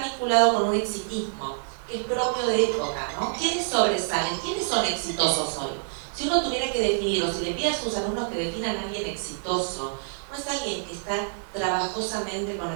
con un exitismo que es propio de época, ¿no? ¿Quiénes sobresalen? ¿Quiénes son exitosos hoy? Si uno tuviera que definir, o si le pide a sus alumnos que definan a alguien exitoso, no es alguien que está trabajosamente con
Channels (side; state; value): left; silent; digital silence